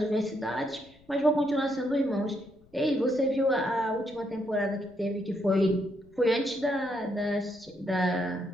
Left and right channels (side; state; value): left; noise; rumble, 29 dB below the sound